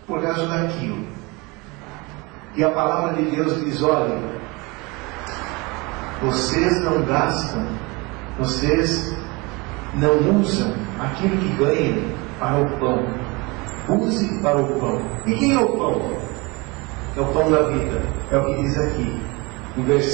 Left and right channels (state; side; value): quieter; left; 26.0 dB